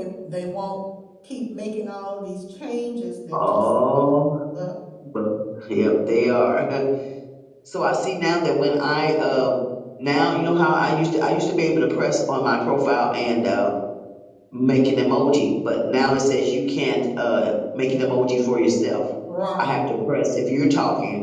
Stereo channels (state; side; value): identical; both; correlation 1.00